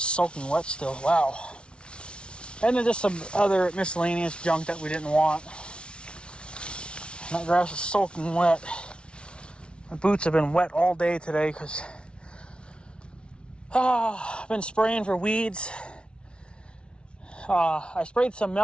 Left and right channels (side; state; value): right; late; 0.058 ms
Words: soaking wet still. Wow. And then just some other miscellaneous junk that we didn't want. And that grass is soaking wet. My boots have been wet all day today because I've been spraying for weeds. I sprayed some